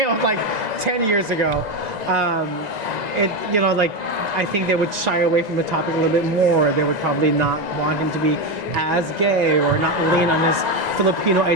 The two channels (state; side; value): late; left; 2.0 ms